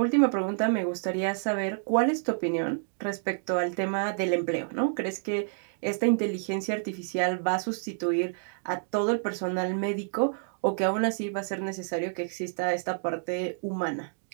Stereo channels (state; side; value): silent; left; digital silence